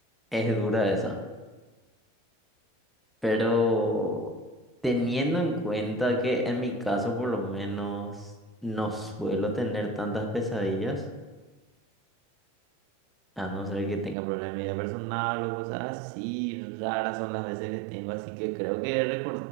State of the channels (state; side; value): drops out; left; at 14.2 s